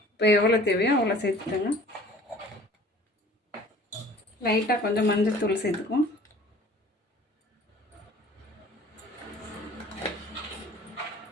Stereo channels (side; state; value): both; normal; correlation 0.48